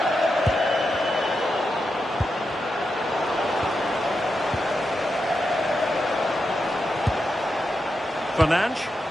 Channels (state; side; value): normal; both; correlation 0.87